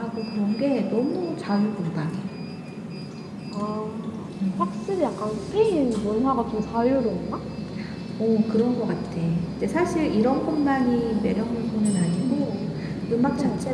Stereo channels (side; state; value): both; identical; correlation 1.00